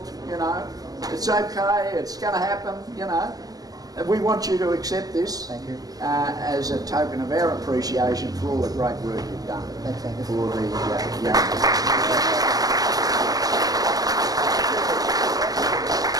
you know, it's okay, it's going to happen, you know. We want you to accept this. Thank you. As a token of our appreciation for all the great work you've done. Thanks, Angus. For the young.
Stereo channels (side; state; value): left; late; 0.18 ms